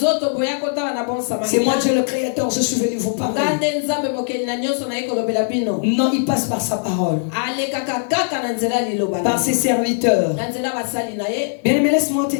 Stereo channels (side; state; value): right; silent; 63 dB below the other